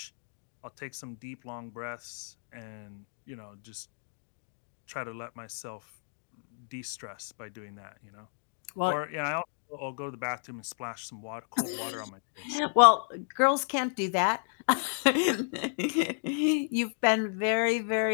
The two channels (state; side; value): silent; right; 57 dB below the other